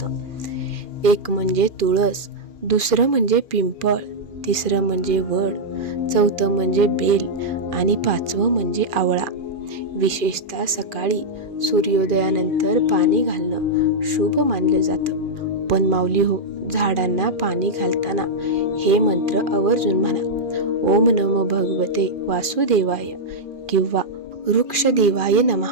एक म्हणजे तुळस, दुसरं म्हणजे पिंपळ, तिसरं म्हणजे वड, चौथं म्हणजे बेल आणि पाचवं म्हणजे आवळा. विशेषतः सकाळी सूर्योदयानंतर पाणी घालणं शुभ मानलं जातं. पण माऊली हो, झाडांना पाणी घालताना हे मंत्र आवर्जून म्हणा. ओम नमो भगवते वासुदेवाय किंवा वृक्षदेवाय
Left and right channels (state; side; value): late; left; 2.4 ms